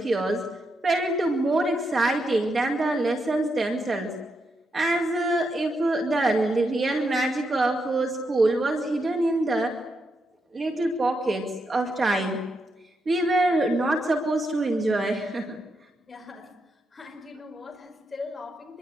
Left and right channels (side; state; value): both; normal; correlation 0.82